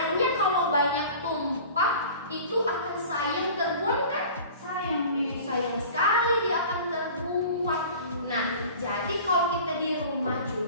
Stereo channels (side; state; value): both; inverted; correlation -0.42